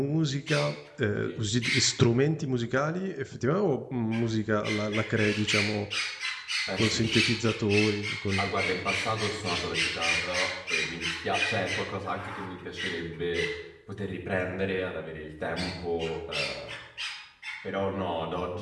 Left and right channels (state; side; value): identical; both; correlation 1.00